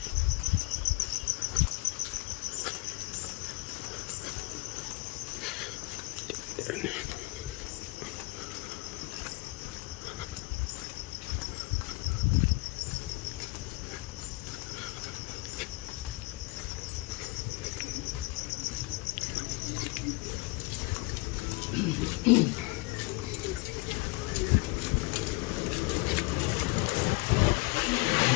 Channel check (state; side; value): quieter; right; 25.5 dB